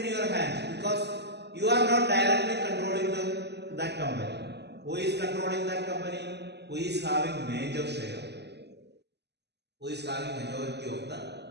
in your hands because you are not directly controlling that company. Who is controlling that company? Who is having major share? Who is having majority of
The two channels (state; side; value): late; left; 0.49 ms